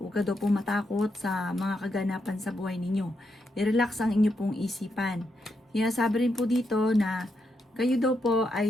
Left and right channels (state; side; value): normal; both; correlation 0.82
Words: Huwag ka daw po matakot sa mga kaganapan sa buhay ninyo. I-relax ang inyo pong isipan. Sinasabi rin po dito na kayo daw po